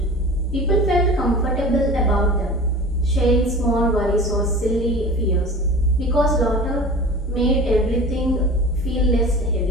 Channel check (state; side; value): normal; both; correlation 0.38